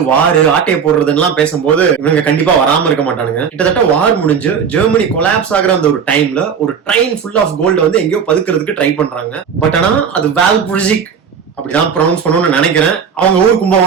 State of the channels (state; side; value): quieter; left; 6.9 dB